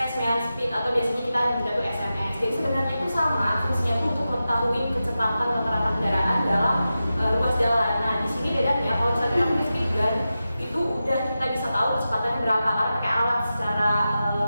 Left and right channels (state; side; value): inverted; both; correlation -0.92